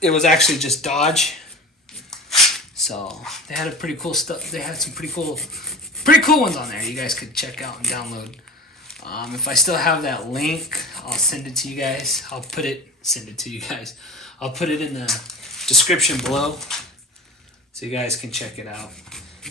it was actually just Dodge. So they had a pretty cool stuff. They had some pretty cool ones on there you guys could check out and download. If I still have that link, I'll send it to you guys. I'll put it in the description below so you guys can check it out.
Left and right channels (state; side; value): normal; both; correlation 0.35